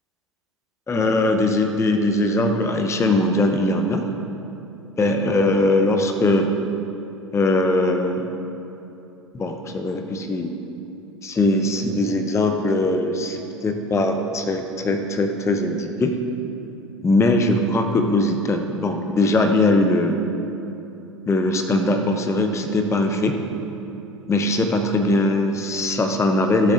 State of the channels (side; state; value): both; normal; correlation 0.47